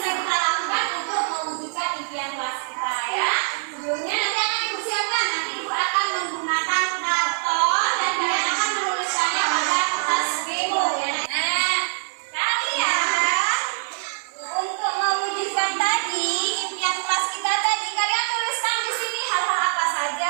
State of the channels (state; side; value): silent; left; digital silence